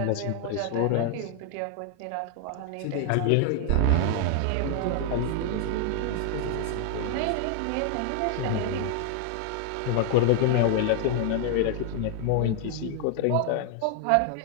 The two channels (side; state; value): both; different; correlation 0.00